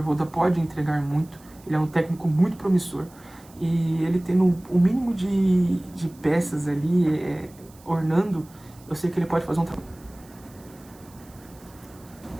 pode entregar muito. Ele é um técnico muito promissor. E ele tendo o mínimo de peças ali, ornando, eu sei que ele pode fazer um trabalho.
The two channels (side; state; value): right; noise; hiss, 26 dB below the sound